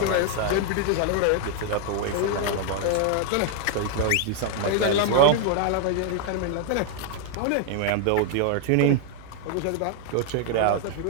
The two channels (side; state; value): both; different; correlation 0.00